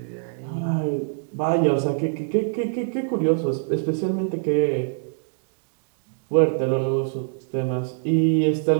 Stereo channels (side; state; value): left; silent; 63 dB below the other